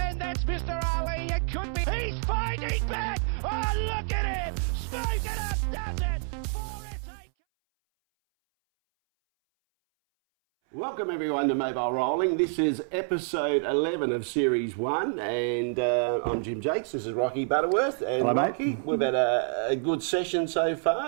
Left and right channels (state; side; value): silent; left; 59 dB below the other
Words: that's Mr. Ali. It could be, he's fighting back. Oh, look at him. Speak it up, does it. Welcome everyone to Mobile Rolling. This is episode 11 of Series 1 and I'm Jim Jacques, this is Rocky Butterworth and hello, Rocky. mate. We've had a good session so